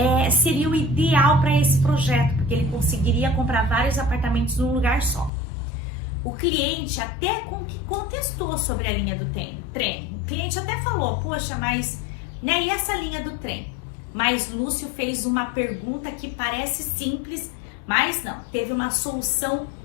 seria o ideal para esse projeto, porque ele conseguiria comprar vários apartamentos num lugar só. O cliente até contestou sobre a linha do trem. O cliente até falou, poxa, mas, né, e essa linha do trem? Mas Lúcio fez uma pergunta que parece simples, mas não, teve uma solução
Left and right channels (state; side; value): drops out; right; at 5.3 s